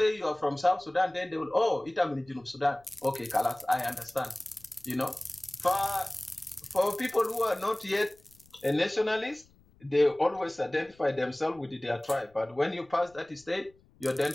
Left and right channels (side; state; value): left; noise; rumble, 29 dB below the sound